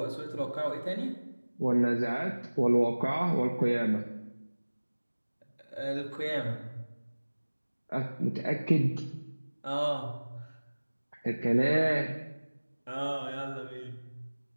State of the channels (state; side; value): inverted; both; correlation -1.00